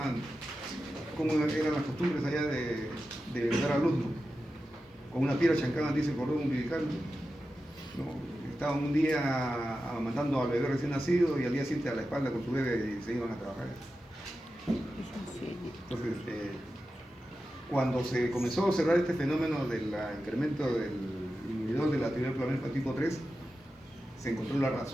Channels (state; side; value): normal; both; correlation 0.92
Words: cómo eran las costumbres allá de dar a luz, ¿no?, con una piedra chancada, dice, cordón umbilical, ¿no? Estaban un día amamantando al bebé recién nacido y al día siguiente a la espalda con su bebé y se iban a trabajar. Entonces, cuando se comenzó a observar este fenómeno del incremento del inhibidor de la actividad inflamatoria tipo 3, se encontró la